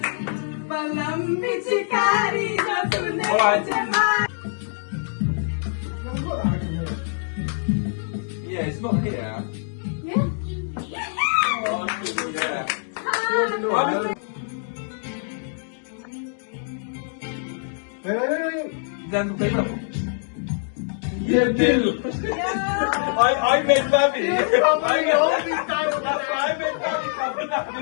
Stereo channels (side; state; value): right; silent; digital silence